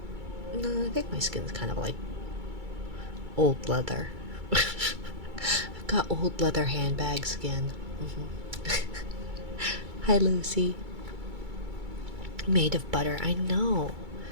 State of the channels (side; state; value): left; late; 2.3 ms